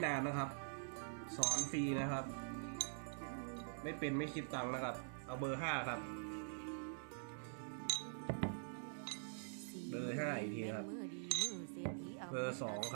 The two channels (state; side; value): silent; left; digital silence